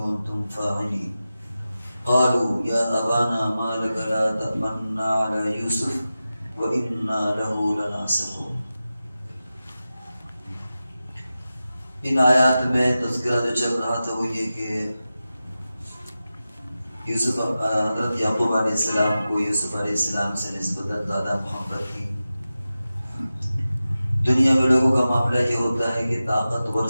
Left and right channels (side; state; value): both; inverted; correlation -0.94